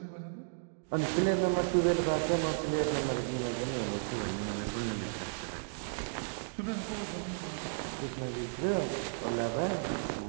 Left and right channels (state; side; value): silent; left; digital silence